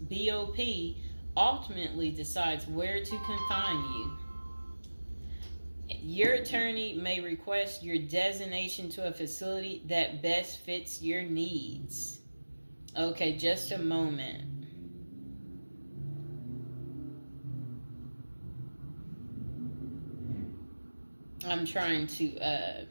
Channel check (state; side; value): inverted; both; correlation -1.00